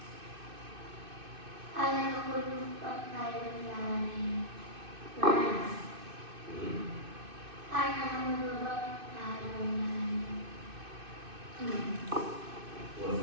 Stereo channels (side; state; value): left; late; 2.6 ms